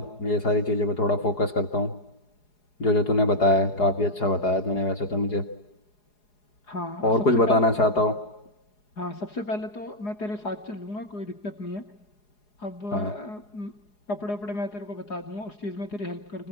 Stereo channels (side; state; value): right; late; 4.8 ms